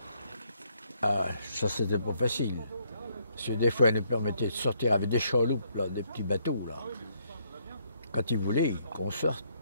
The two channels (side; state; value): both; inverted; correlation -0.71